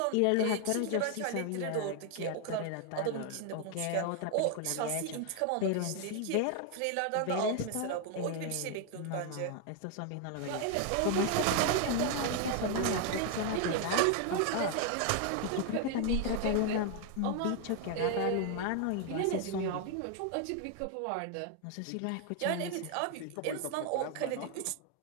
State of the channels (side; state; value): both; different; correlation 0.00